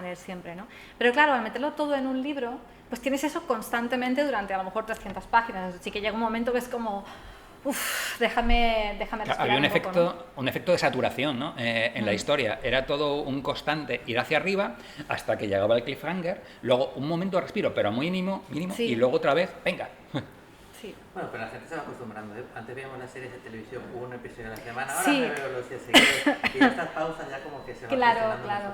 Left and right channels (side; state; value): both; identical; correlation 1.00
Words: siempre, ¿no? Pero claro, al meterlo todo en un libro, pues tienes eso constantemente durante a lo mejor 300 páginas, así que llega un momento que es como, déjame respirar. Había un efecto de saturación, ¿no? En la historia, era todo un constante ir hacia arriba hasta que llegaba el cliffhanger, luego un momento de respiro, pero muy mínimo, sí. Y luego otra vez, venga. Sí. Bueno, pero la gente se va acostumbrando, ¿eh? Antes veíamos las series de televisión, un episodio a la semana, ahora sí. me veo los días seguidos, y estas pausas ya como que se van